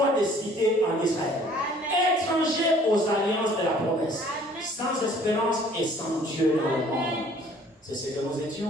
de cité en Israël, étrangers aux alliances de la promesse, sans espérance et sans Dieu dans le monde. C'est ce que nous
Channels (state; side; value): normal; both; correlation 0.55